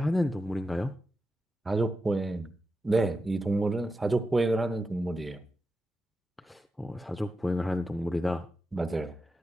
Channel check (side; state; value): both; normal; correlation 0.90